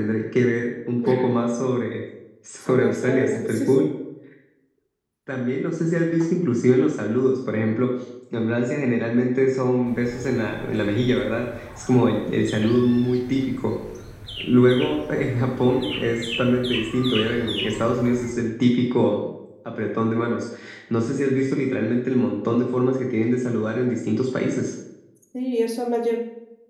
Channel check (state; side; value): identical; both; correlation 1.00